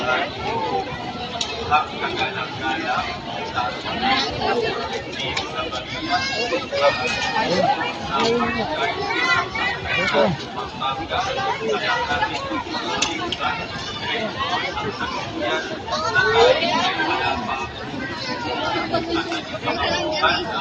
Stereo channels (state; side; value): identical; both; correlation 1.00